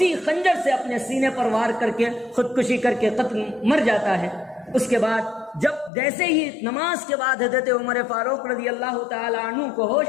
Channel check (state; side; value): drops out; right; at 5.9 s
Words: خنجر سے اپنے سینے پر وار کر کے خودکشی کر کے قتل مر جاتا ہے۔ اس کے بعد جب جیسے ہی نماز کے بعد حضرت عمر فاروق رضی اللہ تعالی عنہ کو ہوش